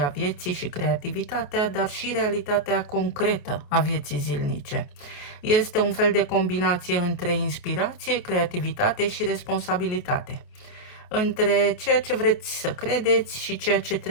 vieții și creativitatea, dar și realitatea concretă a vieții zilnice. Este un fel de combinație între inspirație, creativitate și responsabilitate, între ceea ce vreți să credeți și ceea ce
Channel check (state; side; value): late; right; 28 ms